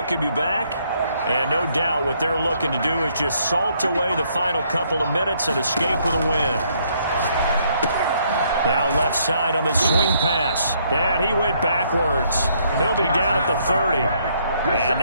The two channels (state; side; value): inverted; both; correlation -0.69